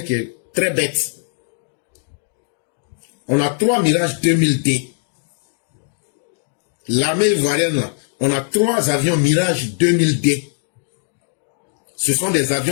qui est très bête. On a 3 Mirage 2000D. L'armée ivoirienne, on a 3 avions Mirage 2000D. Ce sont des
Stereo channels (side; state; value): right; silent; digital silence